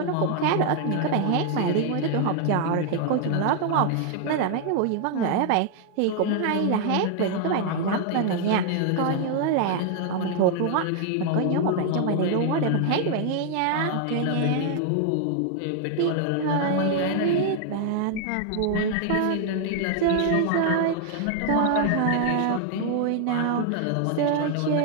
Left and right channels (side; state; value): both; different; correlation 0.00